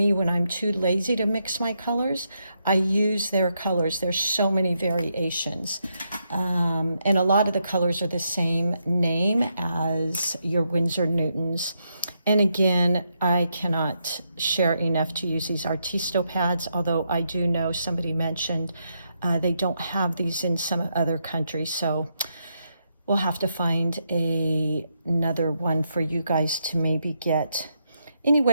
when I'm too lazy to mix my colors, I use their colors. There's so many variations. And a lot of the colors are the same name as your Winsor Newtons. And again, I cannot share enough to use these Artisto pads, although I do know somebody mentioned they don't have these in some other countries, so we'll have to find another one for you guys to maybe get.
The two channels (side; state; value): both; inverted; correlation -0.80